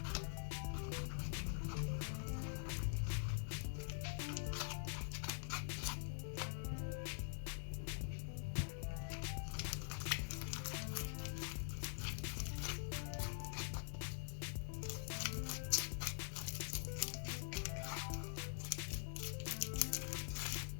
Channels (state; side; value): silent; right; digital silence